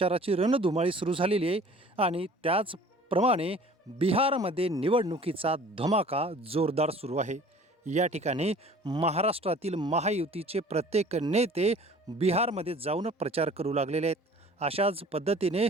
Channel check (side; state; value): both; normal; correlation 0.48